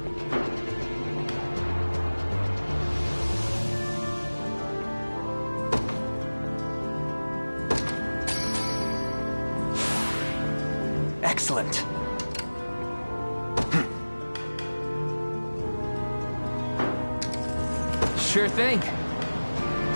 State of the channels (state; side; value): inverted; both; correlation -1.00